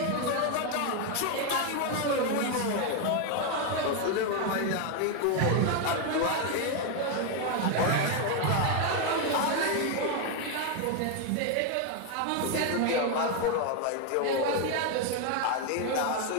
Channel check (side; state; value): both; different; correlation 0.01